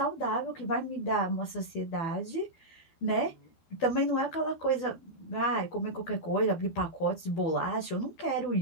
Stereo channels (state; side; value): late; right; 12 ms